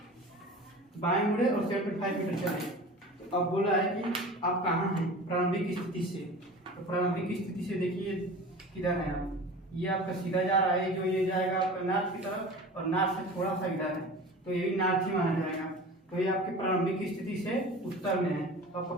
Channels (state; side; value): normal; both; correlation 0.37